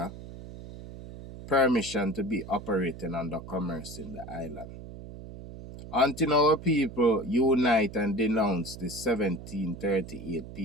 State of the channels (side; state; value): right; noise; hum, 13 dB below the sound